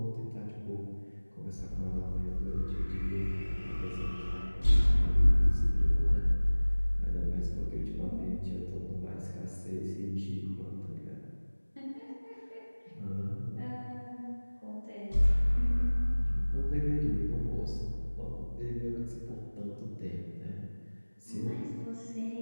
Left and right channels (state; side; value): inverted; both; correlation -1.00